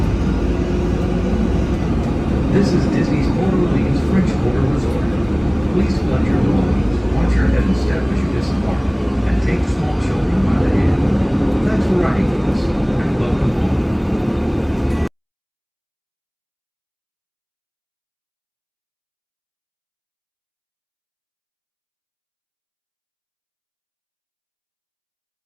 This is Disney's Port Orleans French Quarter Resort. Please collect your belongings, watch your head and step as you disembark, and take small children by the hand. Thanks for riding with us, and welcome home.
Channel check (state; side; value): identical; both; correlation 1.00